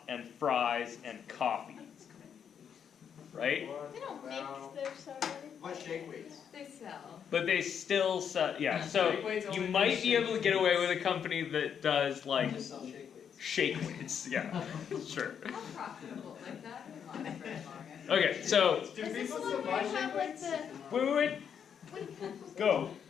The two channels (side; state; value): right; quieter; 7.8 dB